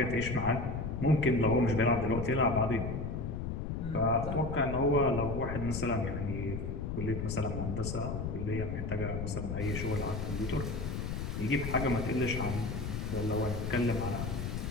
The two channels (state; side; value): noise; left; rumble, 3 dB below the sound